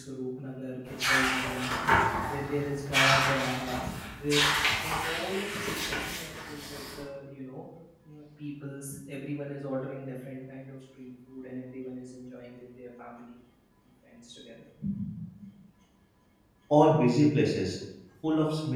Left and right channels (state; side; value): identical; both; correlation 1.00